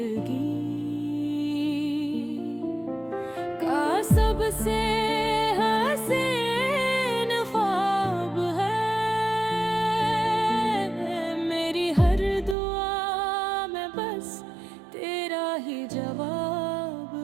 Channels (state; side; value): drops out; left; at 12.6 s